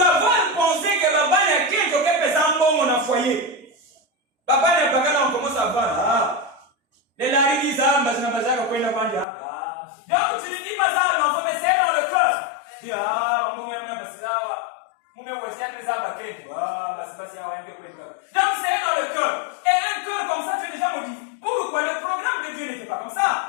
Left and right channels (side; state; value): right; drops out; at 9.2 s